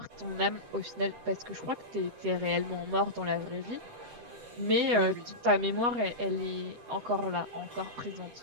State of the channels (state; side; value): late; left; 13 ms